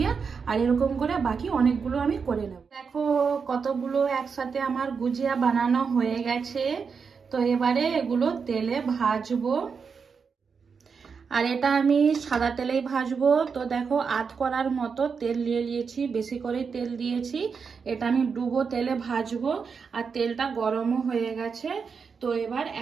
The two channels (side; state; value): left; quieter; 5.7 dB